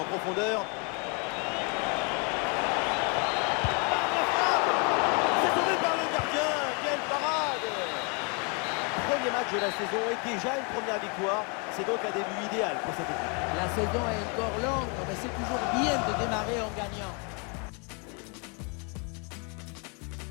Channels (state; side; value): quieter; right; 34.7 dB